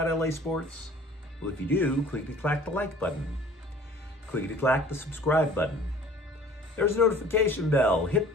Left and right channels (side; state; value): both; normal; correlation 0.49